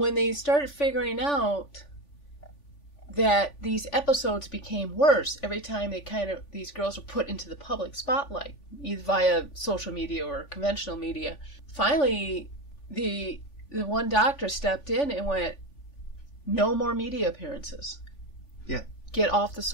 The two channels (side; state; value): right; late; 3.5 ms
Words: they started figuring out that these episodes became worse every time these girls were put into the public spotlight, either via social media or conventional media. Finally, the one doctor stepped in and went, no more media appearances. Yeah. Get off the